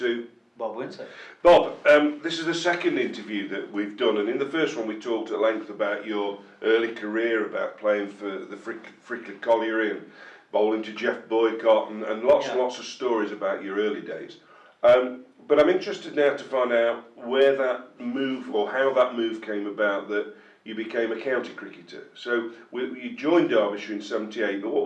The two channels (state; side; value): identical; both; correlation 1.00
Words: Bob Wincer. Bob. This is the second interview that we've done, and in the first one we talked at length about your early career, about playing for the Frickley Colliery and bowling to Jeff Boycott and lots and lots of stories about your early days. But I'm interested now to find out where that move, or how that move came about, that you became a county cricketer. So you joined Derbyshire in '78, but what